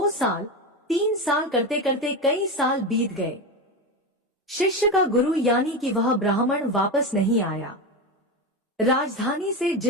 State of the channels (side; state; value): both; normal; correlation 0.18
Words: साल, 3 साल करते करते कई साल बीत गए। शिष्य का गुरु यानी कि वह ब्राह्मण वापस नहीं आया। राजधानी से